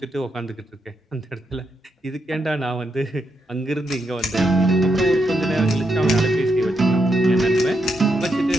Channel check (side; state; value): both; normal; correlation 0.81